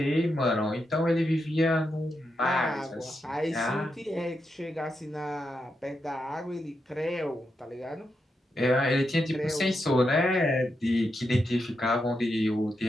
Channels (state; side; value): normal; both; correlation 0.85